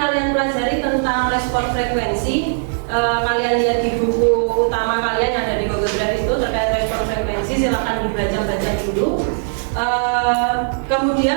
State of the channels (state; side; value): silent; left; digital silence